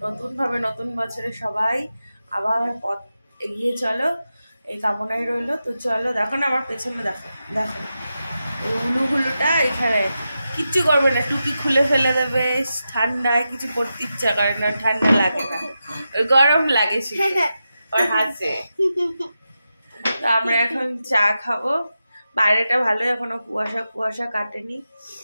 নতুনভাবে নতুন বছরে সবাই আবার পথ এগিয়ে চলো, এই কামনাই রইলো। তো চলো, দেখো না আমার পেছনে, দেখো দেখো উলুগুলুটা এখানে কিচ্ছু করবে না, টুপি খুলে ফেলে দেবে। ঠান্ডায় কিছু করতে ইচ্ছা করে না, ঠান্ডা লাগে না, গরম লাগে শুধু। ওর হাসে। তো আমরা এখন চা খাবো। বাইরেটা ভালো, এখনো কুয়াশা কুয়াশা কাটেনি।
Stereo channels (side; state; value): both; inverted; correlation -0.90